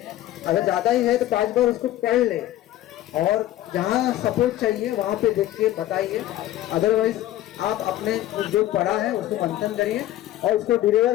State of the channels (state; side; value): quieter; right; 14.0 dB